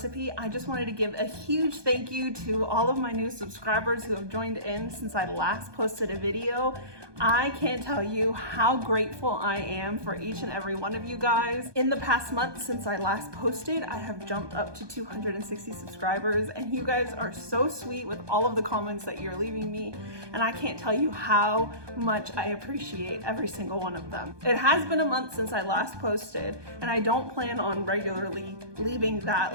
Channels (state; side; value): late; left; 1.2 ms